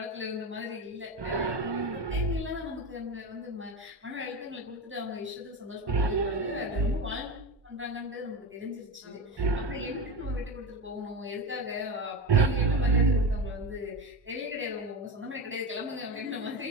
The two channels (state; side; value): normal; both; correlation 0.21